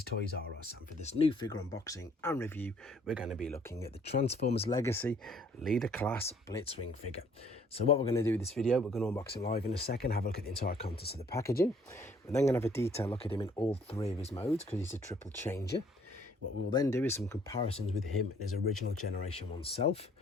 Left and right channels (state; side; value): normal; both; correlation 0.61